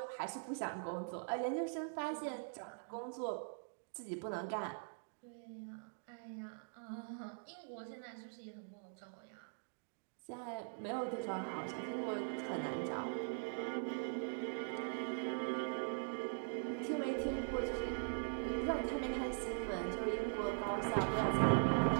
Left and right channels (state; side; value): silent; left; digital silence